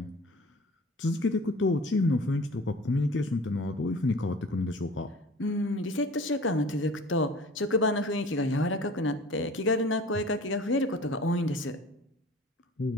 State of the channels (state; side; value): normal; both; correlation 0.43